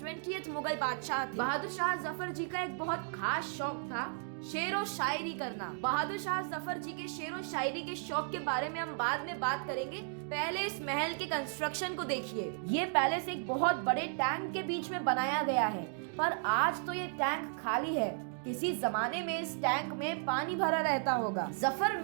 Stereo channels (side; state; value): left; silent; 55 dB below the other